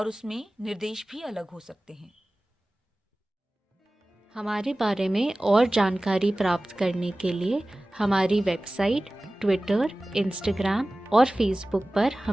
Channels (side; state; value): both; normal; correlation 0.97